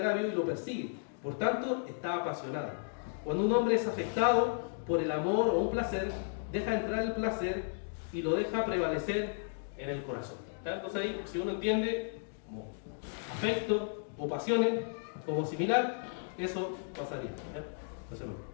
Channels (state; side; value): silent; right; digital silence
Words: y lo persigue. Por tanto, está apasionado. Cuando un hombre es afectado por el amor o un placer, deja entrar el placer y lo deja prevalecer en el corazón. ¿Ya? Entonces ahí, si uno entiende como afecto o pasiones como similar, eso pasaría. ¿Ya? Entonces,